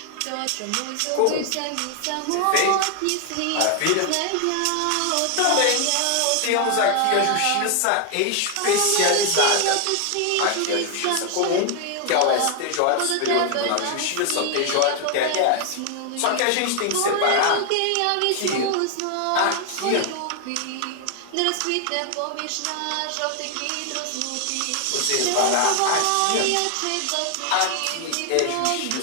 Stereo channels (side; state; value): both; different; correlation 0.00